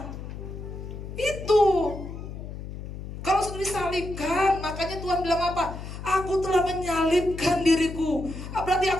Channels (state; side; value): noise; left; hum, 10 dB below the sound